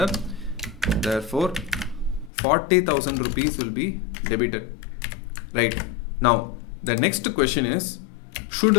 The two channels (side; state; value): right; drops out; at 2.3 s